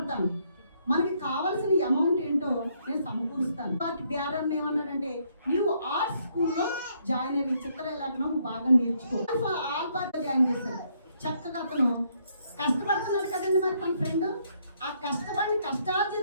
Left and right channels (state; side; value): inverted; both; correlation -0.71